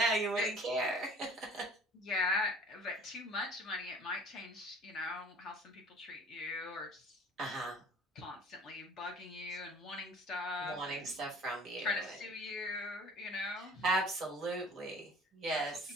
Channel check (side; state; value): both; normal; correlation 0.49